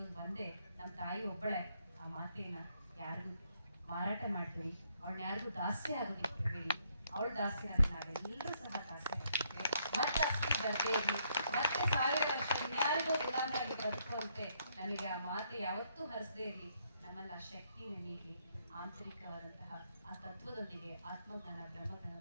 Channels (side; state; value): both; inverted; correlation -0.72